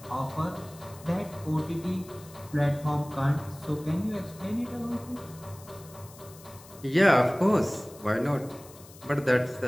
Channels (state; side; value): noise; left; hiss, 21 dB below the sound